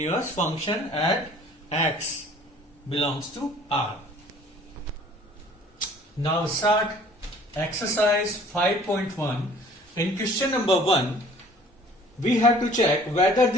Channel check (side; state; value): both; normal; correlation 0.52